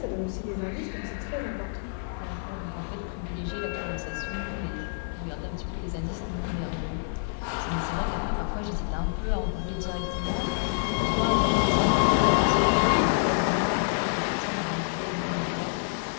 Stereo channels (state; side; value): silent; right; 59 dB below the other